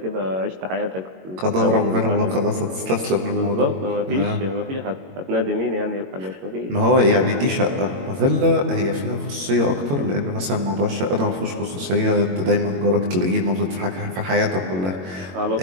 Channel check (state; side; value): late; left; 22 ms